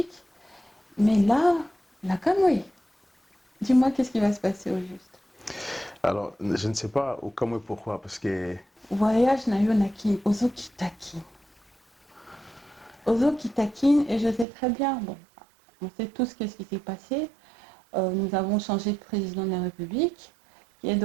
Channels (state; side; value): drops out; left; at 14.5 s